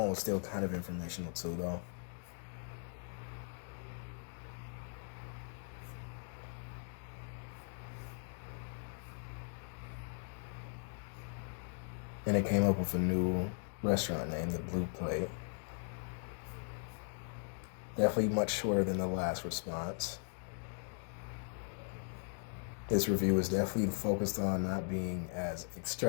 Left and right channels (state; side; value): silent; right; 52 dB below the other